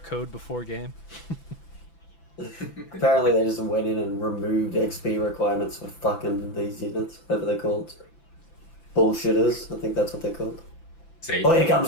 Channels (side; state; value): right; late; 6.0 ms